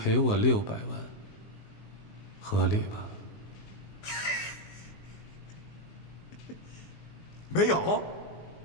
我600万，合理吧？没有。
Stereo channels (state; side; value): late; right; 19 ms